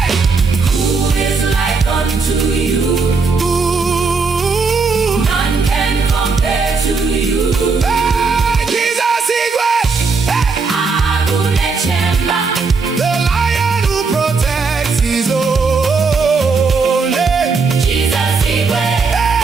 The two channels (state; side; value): quieter; left; 4.6 dB